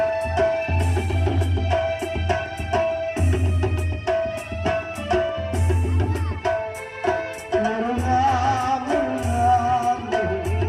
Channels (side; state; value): both; identical; correlation 1.00